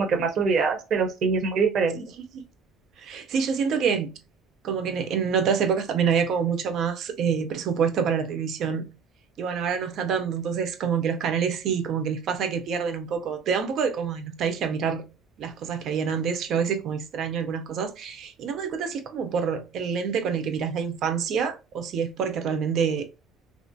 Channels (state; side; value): quieter; left; 6.1 dB